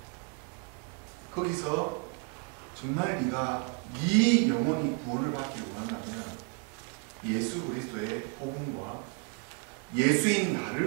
거기서 정말 네가 이 영혼이 구원을 받기를 원한다면 예수 그리스도의 복음과 예수인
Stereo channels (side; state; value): left; quieter; 35.8 dB